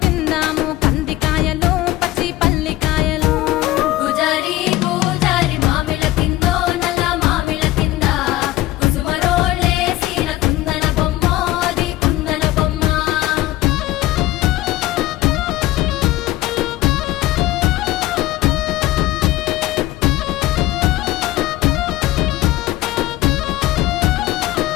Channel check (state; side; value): quieter; right; 16.1 dB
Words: తిందాము కందికాయలు పచ్చి పల్లికాయలు గుజారి గుజారి మామిళ్ళ కిందో నల్ల మామిళ్ళ కింద కుసుమరోళ్ళేసిన కుందన బొమ్మ అది కుందన బొమ్మ